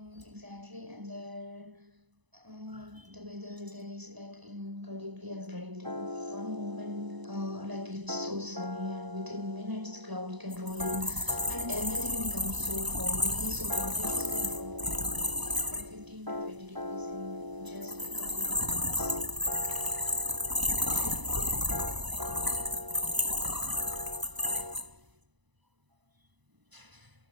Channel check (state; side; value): late; left; 1.0 ms